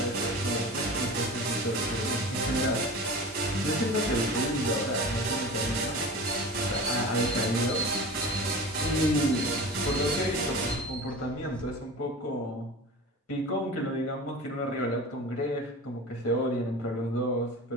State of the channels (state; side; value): normal; both; correlation 0.34